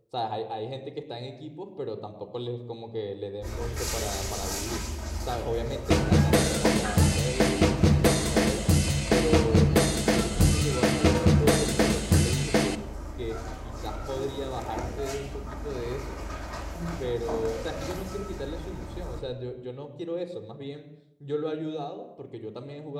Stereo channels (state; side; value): identical; both; correlation 1.00